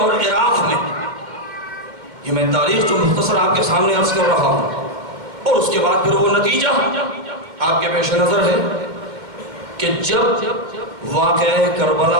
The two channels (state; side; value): late; left; 2.2 ms